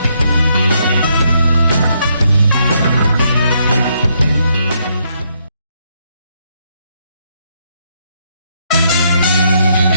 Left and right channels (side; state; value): both; inverted; correlation -0.75